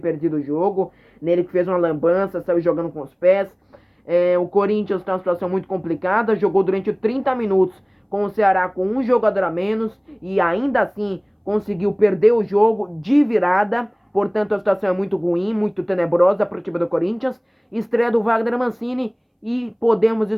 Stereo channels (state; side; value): identical; both; correlation 1.00